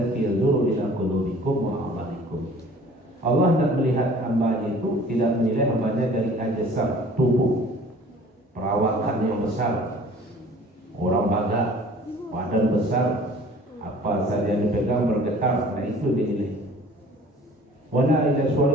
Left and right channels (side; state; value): both; normal; correlation 0.49